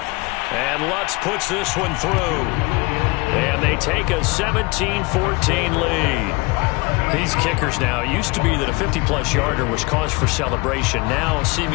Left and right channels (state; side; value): quieter; right; 26.3 dB